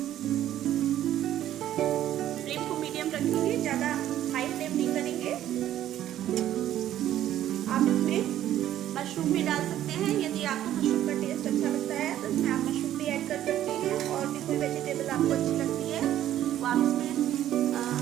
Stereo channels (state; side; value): quieter; left; 12.2 dB